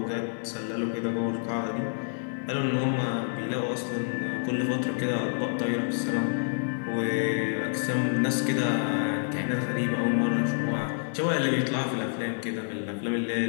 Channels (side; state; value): right; silent; digital silence